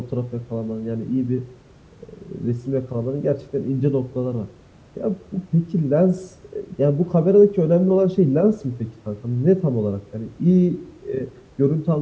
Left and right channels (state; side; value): identical; both; correlation 1.00